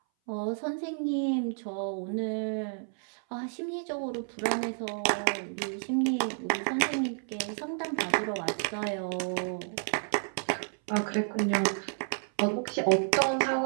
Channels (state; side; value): silent; left; 57 dB below the other